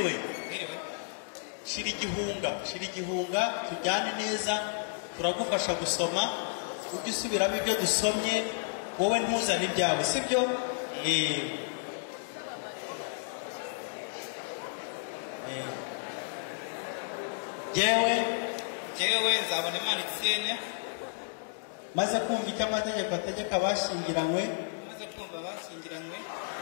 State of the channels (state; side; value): silent; right; digital silence